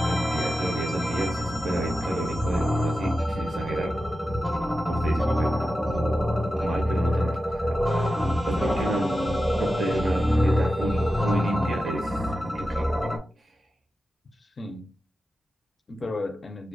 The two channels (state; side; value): normal; both; correlation 0.92